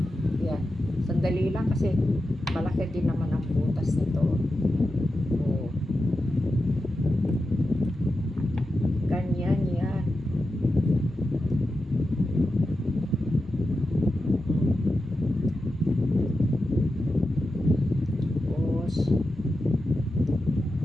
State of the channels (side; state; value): both; normal; correlation 0.90